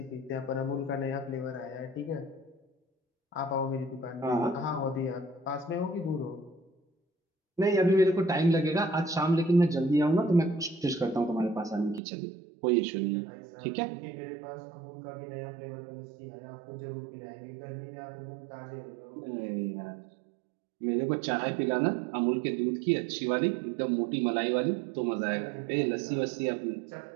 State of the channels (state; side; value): drops out; left; at 12.0 s